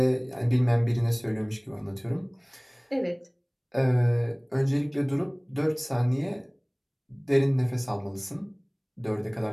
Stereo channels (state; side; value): identical; both; correlation 1.00